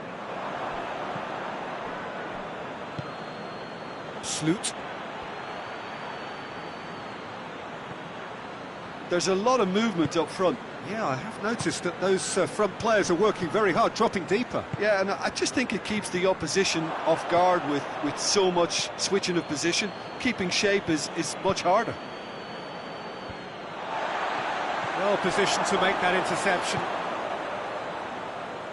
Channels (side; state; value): both; identical; correlation 1.00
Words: Sloot. There's a lot of movement up front. Yeah, I have noticed that those front players are working very hard, dropping deeper. Yeah, and I just think it keeps the opposition off guard with so much switching of position. Keeping shape is much harder. Well positioned to make that interception.